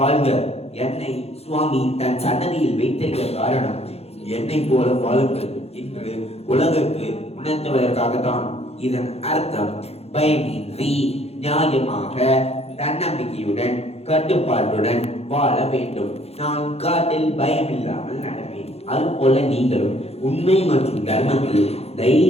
என்னை சுவாமி தன் சன்னதியில் வைத்திருக்க காரணம் என்னை போல வாழுங்கள் என்று உலகுக்கு உணர்த்துவதற்காகத்தான். இதன் அர்த்தம் பயமின்றி நியாயமாக தன்னம்பிக்கையுடன் கட்டுப்பாட்டுடன் வாழ வேண்டும். நான் காட்டில் பயமில்லாமல் நடப்பேன். அதுபோல நீங்களும் உண்மை மற்றும் தர்மத்தில்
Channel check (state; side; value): late; right; 0.30 ms